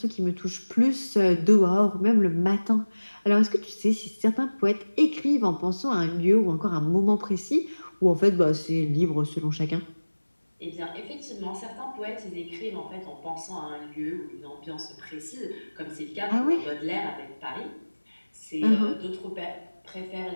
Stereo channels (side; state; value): both; inverted; correlation -1.00